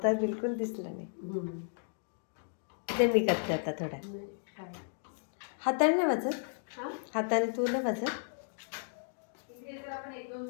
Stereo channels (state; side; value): silent; right; digital silence